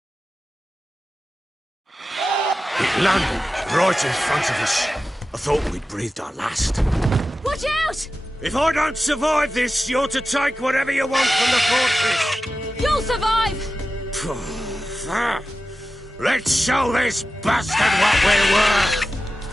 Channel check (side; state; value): both; normal; correlation 0.93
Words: It landed right in front of us. I thought we'd breathed our last. Watch out! If I don't survive this, you're to take whatever you want from the fortress. You'll survive! Let's show this bastard what we're worth!